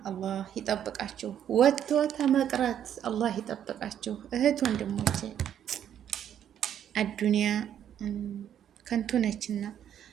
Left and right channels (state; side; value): quieter; left; 9.8 dB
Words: አላህ ይጠብቃችሁ። ወጥቶ ተመቅረት አላህ ይጠብቃችሁ። እህት ወንድሞቼ አዱንያ ከንቱ ነችና